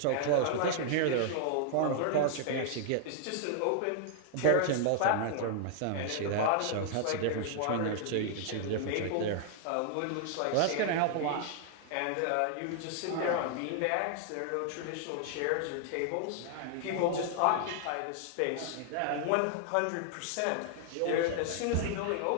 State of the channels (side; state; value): both; different; correlation 0.00